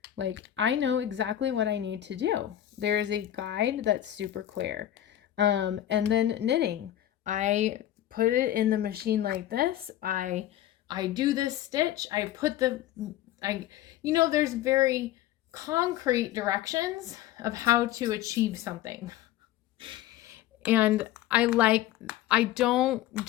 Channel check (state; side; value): quieter; right; 12.8 dB